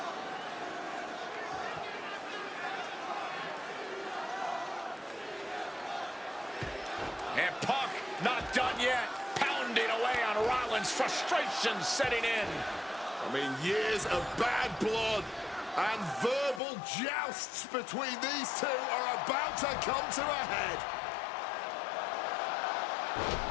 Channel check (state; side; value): drops out; right; at 16.6 s